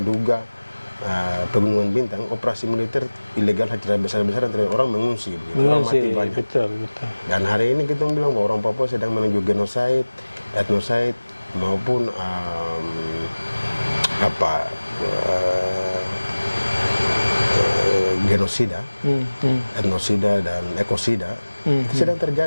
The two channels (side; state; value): both; inverted; correlation -1.00